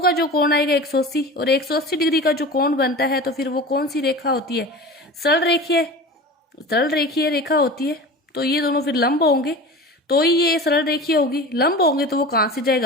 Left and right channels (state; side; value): normal; both; correlation 0.34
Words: जो कोण आएगा 180, और 180 डिग्री का जो कोण बनता है तो फिर वो कौन सी रेखा होती है, सरल रेखीय रेखा होती है। तो ये दोनों फिर लंब होंगे तो ही ये सरल रेखीय होगी, लंब होंगे तो वो कहाँ से